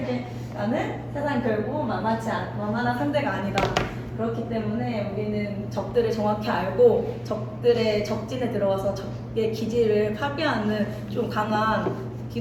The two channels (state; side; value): identical; both; correlation 1.00